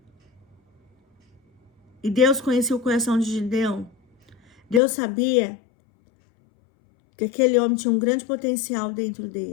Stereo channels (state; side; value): drops out; right; at 4.8 s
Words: E Deus conhecia o coração de Gideão. Deus sabia que aquele homem tinha um grande potencial dentro